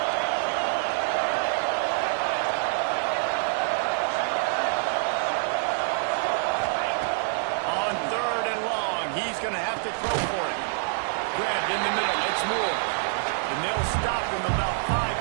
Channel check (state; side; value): silent; left; 61 dB below the other